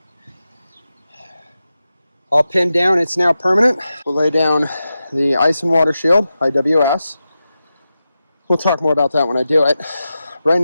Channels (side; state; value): both; inverted; correlation -0.91